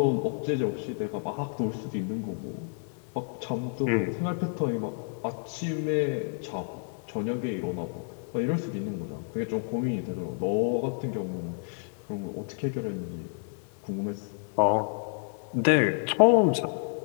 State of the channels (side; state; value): right; silent; 58 dB below the other